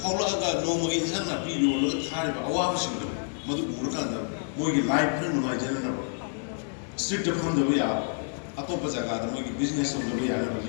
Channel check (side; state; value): right; silent; 59 dB below the other